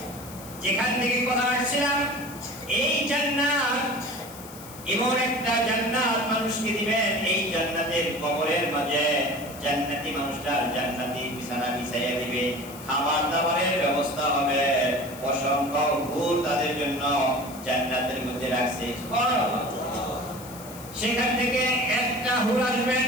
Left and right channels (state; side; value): noise; left; hiss, 17 dB below the sound